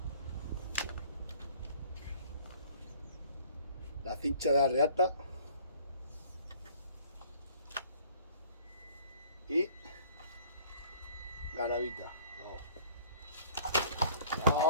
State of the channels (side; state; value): both; inverted; correlation -0.51